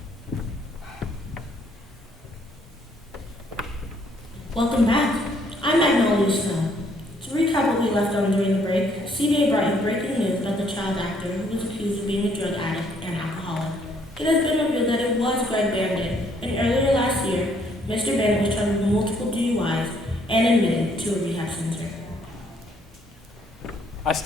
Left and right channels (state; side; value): normal; both; correlation 0.66